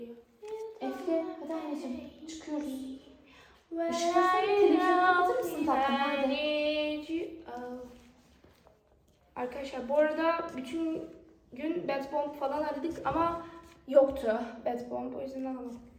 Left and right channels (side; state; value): both; identical; correlation 1.00